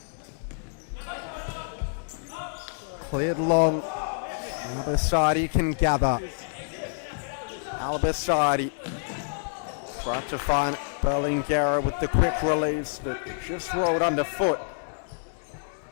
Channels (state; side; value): silent; right; digital silence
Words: Cleared long. Albasadi can gather. Albasadi trying to find Berlingeri with the quick release, but just rolled underfoot.